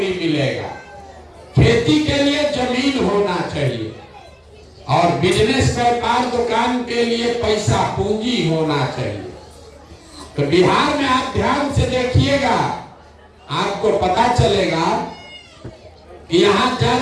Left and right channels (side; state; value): both; identical; correlation 1.00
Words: मिलेगा। खेती के लिए जमीन होना चाहिए और बिजनेस, व्यापार, दुकान के लिए पैसा, पूंजी होना चाहिए। तो बिहार में आप ध्यान से देखिएगा, आपको पता चलेगा कि यहाँ